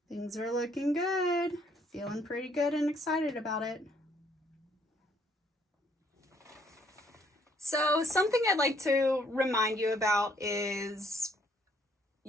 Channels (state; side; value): normal; both; correlation 0.66